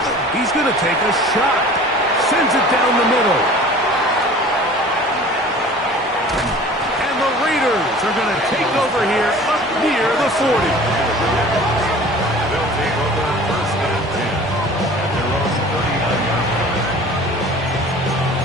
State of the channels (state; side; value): normal; both; correlation 0.44